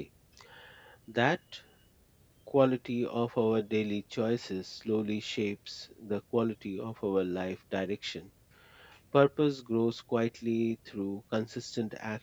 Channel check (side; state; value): both; identical; correlation 1.00